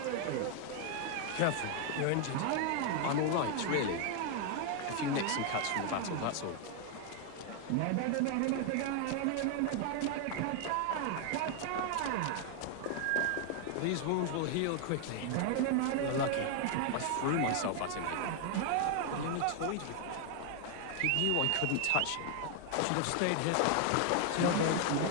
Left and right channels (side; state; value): both; different; correlation 0.00